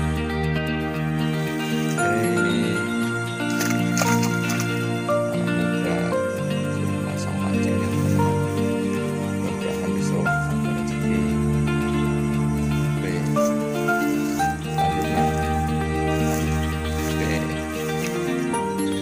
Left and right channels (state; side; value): identical; both; correlation 1.00